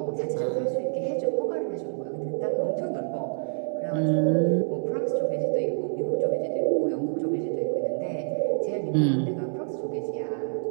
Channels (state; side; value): silent; left; digital silence